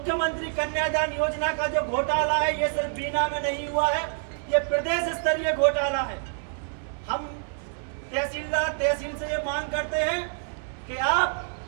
कन्यादान योजना का जो घोटाला है ये सिर्फ बीना में नहीं हुआ है, ये प्रदेश स्तरीय घोटाला है। हम तहसील से ये मांग करते हैं कि आप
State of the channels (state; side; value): silent; left; 60 dB below the other